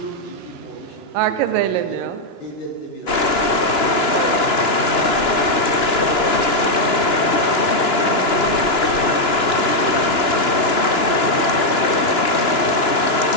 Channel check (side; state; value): right; late; 2.9 ms